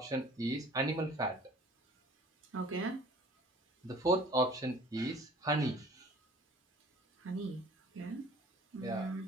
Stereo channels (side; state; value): both; normal; correlation 0.49